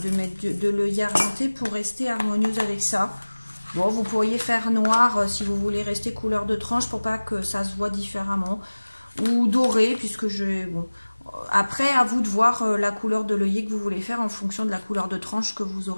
mettre de l'œillet argenté pour rester harmonieuse avec ça. Bon, vous pourriez faire noir si vous voulez rester couleur de tranche pour pas que ça se voit différemment, ou doré puisque je bon. Après, à vous de voir la couleur de l'œillet que vous voulez faire en fonction de la couleur de tranche que vous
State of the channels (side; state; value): both; inverted; correlation -1.00